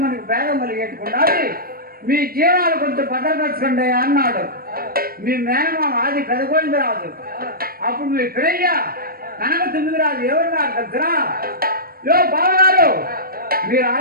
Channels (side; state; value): left; late; 0.43 ms